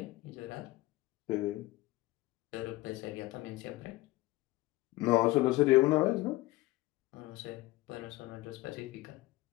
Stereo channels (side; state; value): right; quieter; 19.2 dB